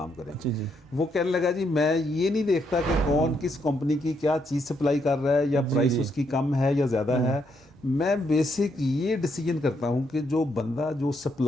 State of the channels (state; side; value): normal; both; correlation 0.76